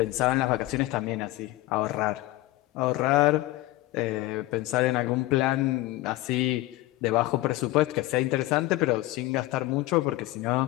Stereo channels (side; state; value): right; quieter; 18.0 dB